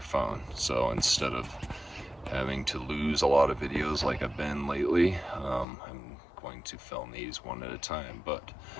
phone. So instead of having to lose a lot of videos like I've been lately, I'm going to film these one at a time. But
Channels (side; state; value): right; drops out; at 5.7 s